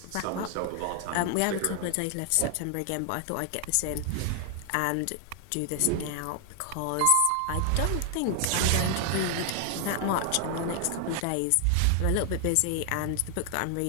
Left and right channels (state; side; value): different; both; correlation 0.00